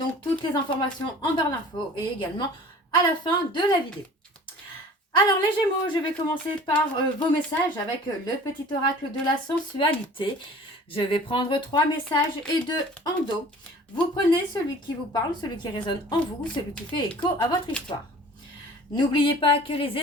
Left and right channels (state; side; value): normal; both; correlation 0.45